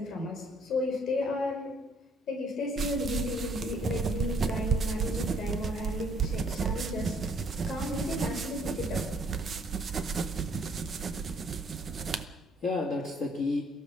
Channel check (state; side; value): normal; both; correlation 0.64